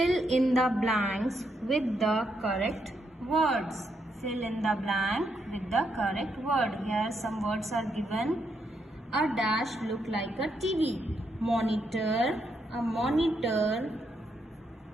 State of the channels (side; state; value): both; normal; correlation 0.79